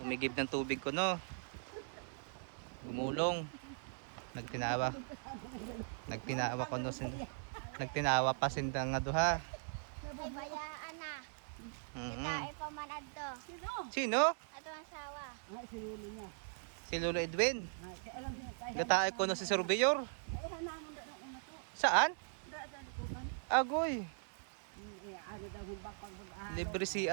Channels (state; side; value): silent; left; digital silence